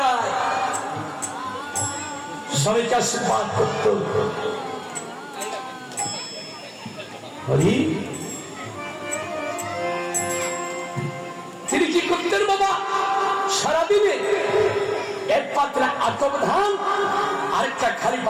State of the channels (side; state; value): both; identical; correlation 1.00